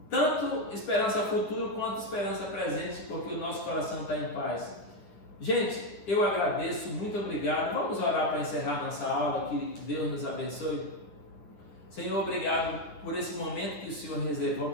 tanto esperança futura quanto esperança presente, porque o nosso coração está em paz. Gente, eu agradeço, muito obrigado. Vamos orar para encerrar nossa aula, que Deus nos abençoe. Senhor, obrigado por esse momento que o Senhor reservou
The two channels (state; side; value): late; right; 9.7 ms